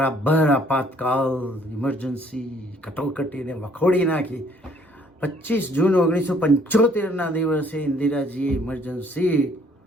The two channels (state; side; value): normal; both; correlation 0.62